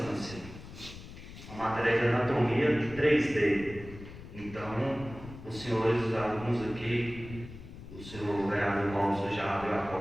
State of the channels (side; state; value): left; noise; rumble, 14 dB below the sound